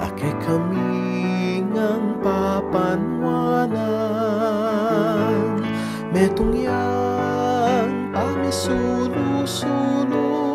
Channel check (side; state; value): both; identical; correlation 1.00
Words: ake kami ngang papanwanan, metong yang pamisulu-sulu,